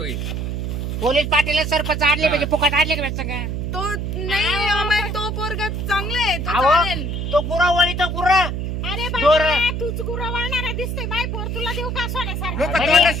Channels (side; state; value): right; noise; hum, 3 dB below the sound